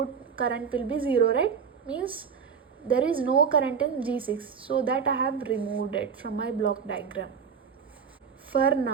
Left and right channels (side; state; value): left; quieter; 6.6 dB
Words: current will be 0, right? Means there is no current in G6. So that I have removed it from my block diagram for